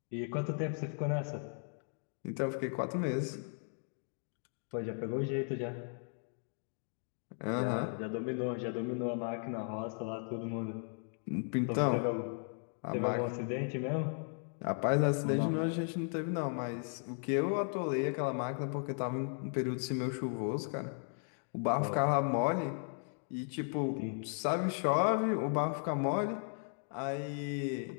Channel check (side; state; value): right; silent; 54 dB below the other